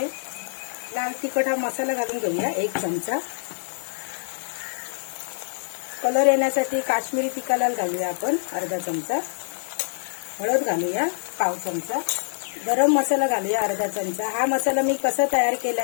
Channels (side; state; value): right; silent; digital silence